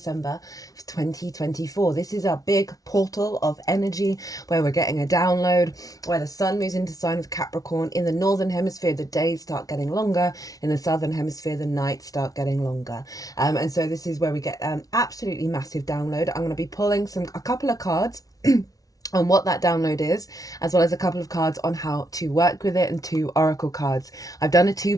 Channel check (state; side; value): late; right; 0.18 ms